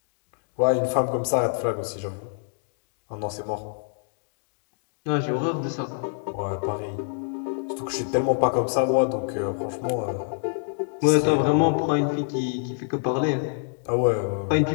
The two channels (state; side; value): silent; right; digital silence